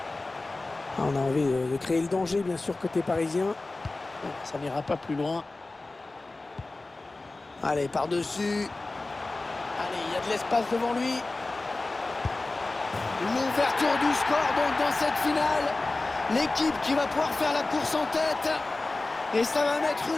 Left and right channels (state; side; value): quieter; right; 3.2 dB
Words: On a envie de créer le danger, bien sûr, côté parisien. Ça n'ira pas plus loin. Allez, par-dessus. Allez, il y a de l'espace devant lui. L'ouverture du score, donc, dans cette finale. L'équipe qui va pouvoir faire la course en tête. Et ça va mettre